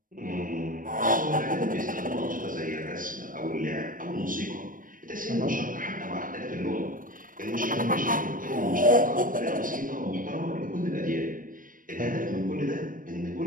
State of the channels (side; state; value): left; late; 0.40 ms